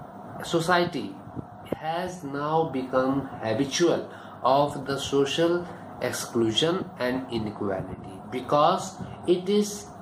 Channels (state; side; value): identical; both; correlation 1.00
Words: society has now become habitual of the social exclusion and inequality because it is